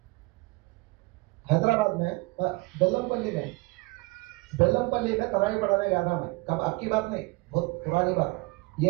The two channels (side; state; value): left; quieter; 24.8 dB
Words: حیدرآباد میں بیلم پلی میں ترائی پڑھانے گیا تھا میں, کب آپ کی بات نہیں, بہت پرانی بات,